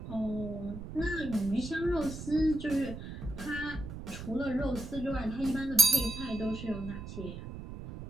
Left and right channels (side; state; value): right; noise; rumble, 10 dB below the sound